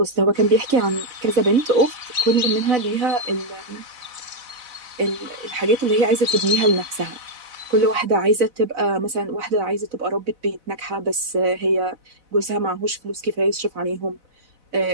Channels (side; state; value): left; late; 4.0 ms